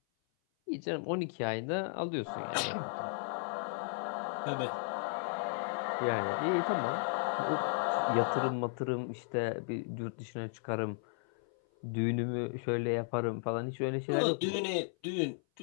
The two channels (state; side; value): silent; right; 54 dB below the other